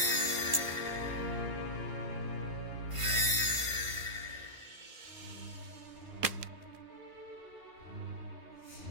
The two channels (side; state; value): left; late; 1.5 ms